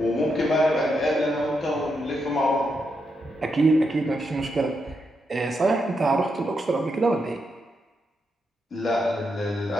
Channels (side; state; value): both; normal; correlation 0.82